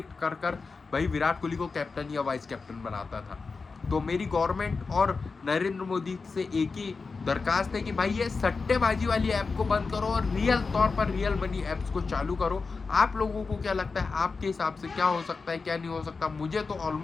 कर भाई विराट कोहली को कैप्टन या वाइस कैप्टन बनाता था। तो मेरी गवर्नमेंट और नरेंद्र मोदी से एक ही दरखास्त है कि भाई ये सट्टेबाजी वाली ऐप को बंद करो और रियल तौर पर रियल मनी ऐप्स को चालू करो। आप लोगों को क्या लगता है, आपके हिसाब से क्या हो सकता है, क्या नहीं हो सकता? मुझे तो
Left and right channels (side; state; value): right; quieter; 4.5 dB